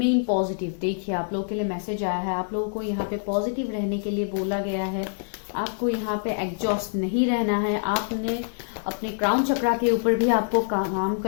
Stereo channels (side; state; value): right; silent; 61 dB below the other